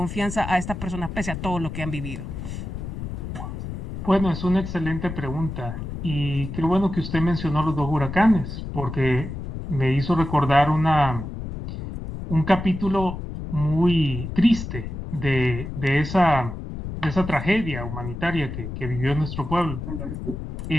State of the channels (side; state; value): left; noise; rumble, 7 dB below the sound